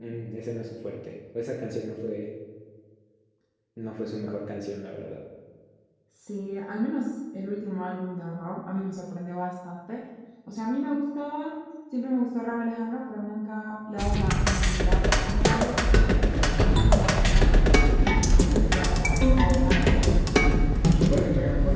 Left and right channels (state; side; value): identical; both; correlation 1.00